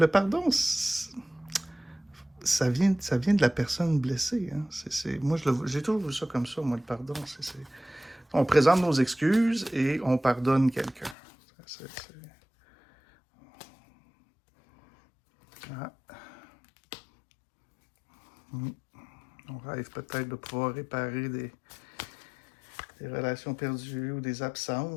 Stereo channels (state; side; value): drops out; right; at 11.2 s